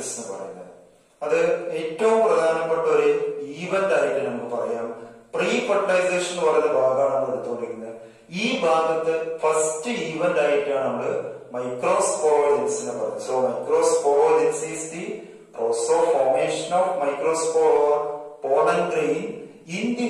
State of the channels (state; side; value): identical; both; correlation 1.00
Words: എന്ന് പറയുന്നത്. അത് ഏറ്റവും പ്രധാനപ്പെട്ട ഒരു ഈവന്റ് ആയിട്ട് നമുക്ക് പറയാം. പ്രീ ഫെർട്ടിലൈസേഷൻ എന്ന് പറയുന്ന ഭാഗമാണ് നമ്മൾ എടുത്തുകൊണ്ടിരിക്കുന്നത്. ഈ ഭാഗത്ത് ഫസ്റ്റ് ഈവന്റ് ആയിട്ടാണ് നമ്മൾ മൈക്രോസ്പോറോജെനിസിനെ പറയുന്നത്. So microsporogenesis is the process of formation of microspore or pollen grain in the